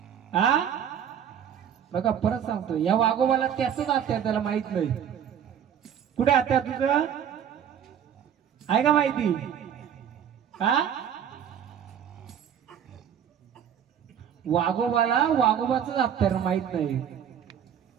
हा? बघा परत सांगतो, या वाघोबाला त्याच हत्यार त्याला माहित नाही. कुठे हत्यार तुझं? आहे का माहिती? हा? वाघोबाला वाघोबाच हत्यार माहित नाही.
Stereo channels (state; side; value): quieter; left; 8.8 dB